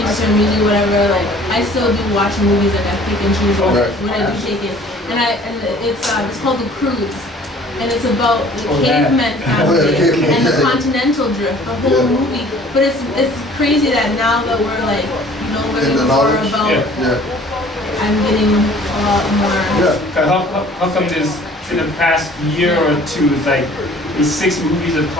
to some music, whatever, I still do watch movies. I pick and choose when I do take it. And it's called The Cruise. And it's about the caveman family and the continental drift, the whole movie. But it's crazy that now that we're learning more about. I'm getting a lot more. How come there's in the past year or two, these 6 movies have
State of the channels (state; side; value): normal; both; correlation 0.52